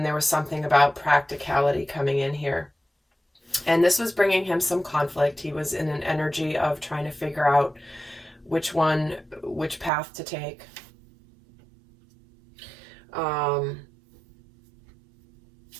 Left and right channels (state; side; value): drops out; left; at 9.9 s